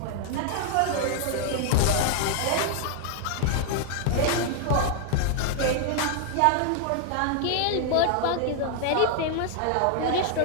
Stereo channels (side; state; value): both; different; correlation 0.00